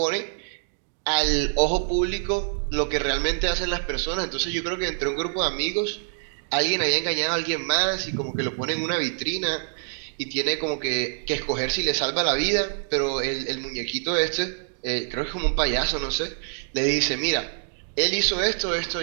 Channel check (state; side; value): silent; left; digital silence